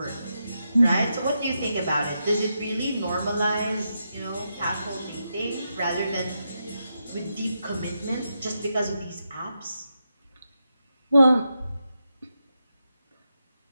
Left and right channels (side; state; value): both; inverted; correlation -0.85